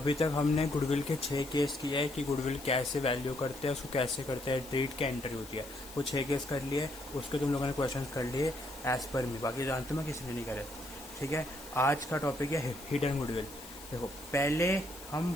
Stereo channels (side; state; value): left; noise; hiss, 16 dB below the sound